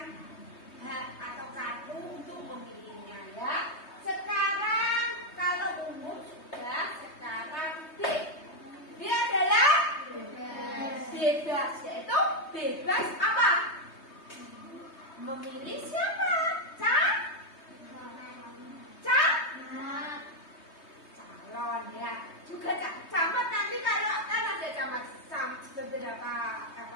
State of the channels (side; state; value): right; late; 3.2 ms